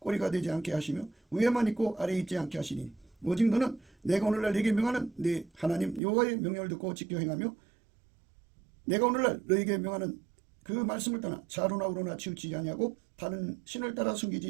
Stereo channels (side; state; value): left; drops out; at 6.0 s